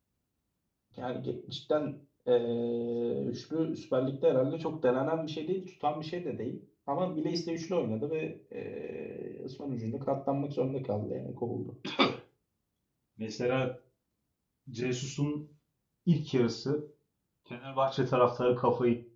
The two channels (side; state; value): both; identical; correlation 1.00